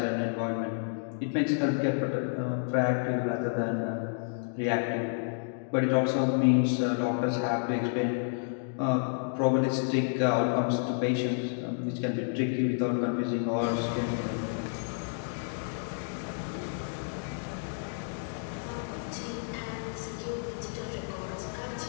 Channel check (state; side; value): silent; right; digital silence